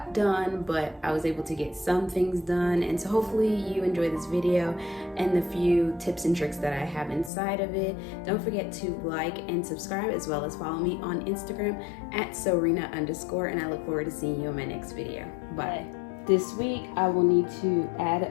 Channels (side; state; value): right; drops out; at 7.3 s